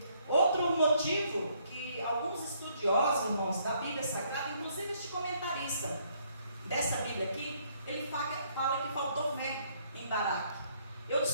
Outro motivo que alguns estudiosos, irmãos, da Bíblia Sagrada, inclusive este comentarista dessa Bíblia aqui, ele fala que faltou fé em Baraque. Eu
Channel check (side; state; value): both; inverted; correlation -0.68